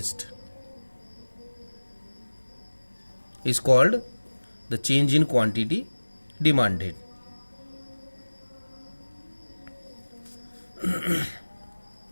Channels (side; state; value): both; inverted; correlation -1.00